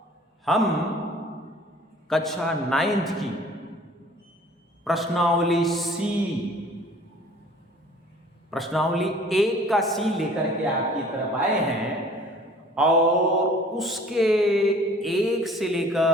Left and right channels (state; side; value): normal; both; correlation 0.51